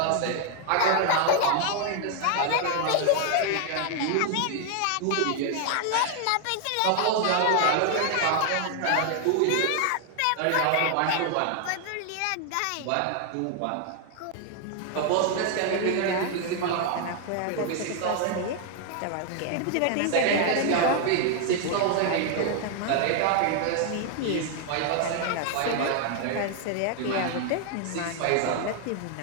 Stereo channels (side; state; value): both; different; correlation 0.00